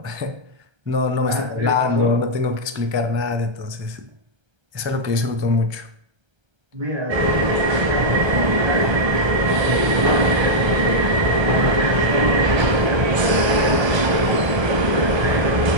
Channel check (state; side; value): late; left; 1.3 ms